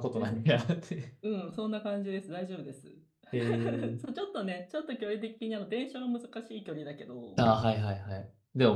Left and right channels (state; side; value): identical; both; correlation 1.00